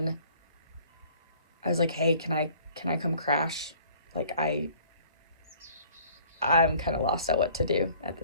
I was like, hey, can I come crash? Like, I'm kind of lost at what to do at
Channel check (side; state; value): both; inverted; correlation -0.54